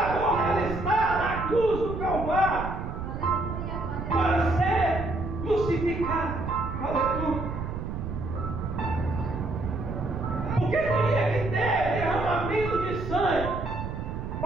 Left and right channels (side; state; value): right; noise; rumble, 6 dB below the sound